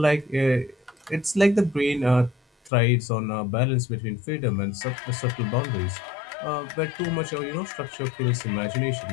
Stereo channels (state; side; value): drops out; right; at 2.7 s